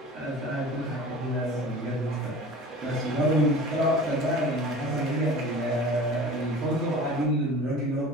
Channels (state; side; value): normal; both; correlation 0.40